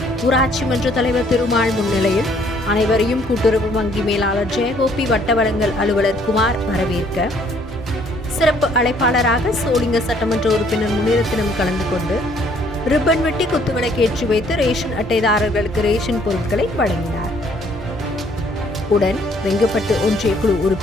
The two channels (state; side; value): normal; both; correlation 0.63